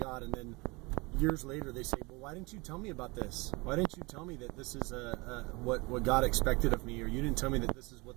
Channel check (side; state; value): left; quieter; 25.8 dB